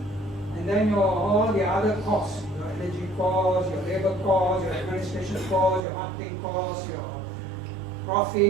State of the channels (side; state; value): left; drops out; at 5.9 s